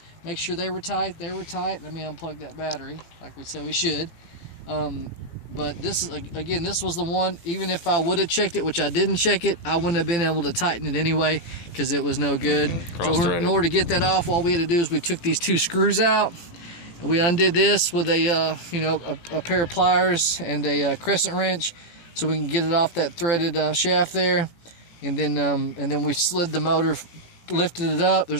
make sure they were tight. They were tight. Let me unplug that battery, like we said we should. But this is, again, this was the one. Even if I would have checked it, which I didn't check it, I wouldn't have been able to tighten it anyway because it was no good. So in order to get that off, all we had to do is we took these two screws out. And we undid this with a, you know, a pair of pliers and a crescent wrench, so we can get it off that threaded shaft there. And then we slid the motor, lifted it up.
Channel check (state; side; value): late; right; 18 ms